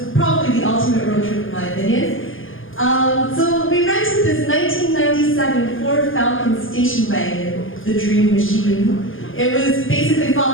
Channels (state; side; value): late; right; 0.58 ms